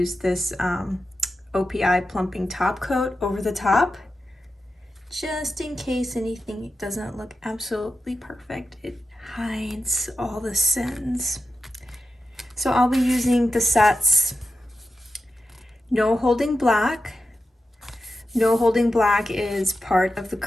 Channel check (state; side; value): normal; both; correlation 0.90